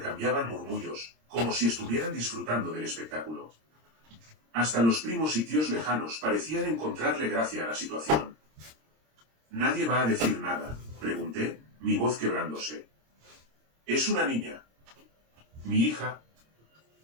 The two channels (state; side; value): late; left; 26 ms